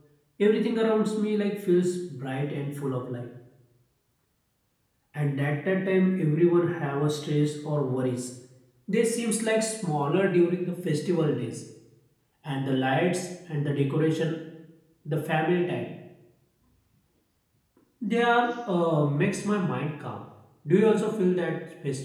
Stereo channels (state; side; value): identical; both; correlation 1.00